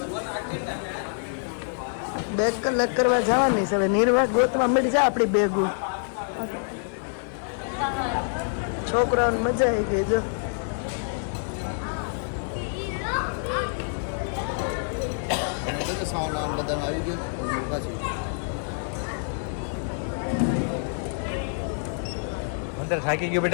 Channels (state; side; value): silent; right; digital silence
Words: બેગ કલાક કરવા જવાની છે હવે. નિર્વાહ ગોતવા મળી જાય આપણી બેગું. છોકરાઓને મજા આવી ગઈ જો. અંદર થાકી ગયો